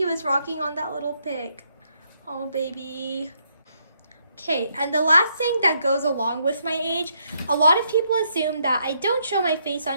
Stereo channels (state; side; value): inverted; both; correlation -0.75